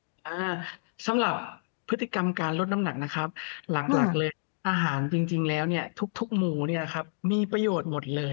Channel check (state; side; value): silent; right; digital silence